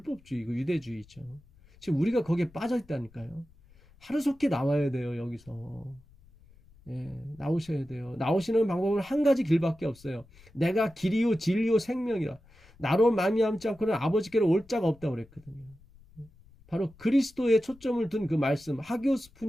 유대주의죠. 지금 우리가 거기에 빠져 있다니까요. 하루속히 나와야 돼요. 여기서. 나오셔야 돼요. 나오시는 방법은 한 가지 길밖에 없어요. 내가 길이요 진리요 생명이라. 나로 말미암지 않고는 아버지께로 올 자가 없다고 그랬거든요. 바로 그리스도에 초점을 둔 그 말씀, 하기오스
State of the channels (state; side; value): noise; left; rumble, 26 dB below the sound